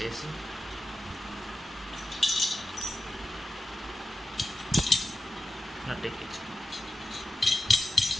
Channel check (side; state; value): both; normal; correlation 0.92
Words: చేసి నట్ ఎక్కించు.